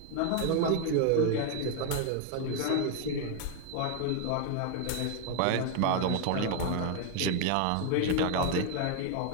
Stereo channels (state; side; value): different; both; correlation 0.00